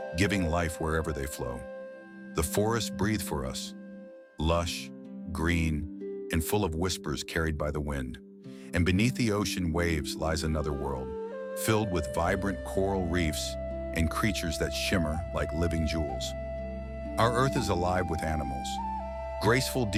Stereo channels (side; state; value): both; identical; correlation 1.00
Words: giving life wherever they flow. The forests breathe for us, lush, green, and full of whispers carried by the wind. And beneath the ocean waves lies another world, filled with vibrant coral reefs and creatures that shimmer like living jewels. Our Earth is alive with animals. Graceful